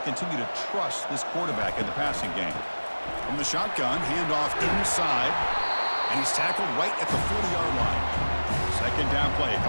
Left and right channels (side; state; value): both; inverted; correlation -1.00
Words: continue to trust this quarterback in the passing game. From the shotgun, handoff inside, and he's tackled right at the 40-yard line. 2nd down play